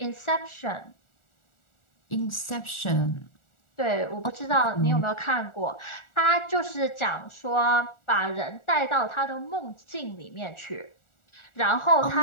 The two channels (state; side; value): late; right; 1.4 ms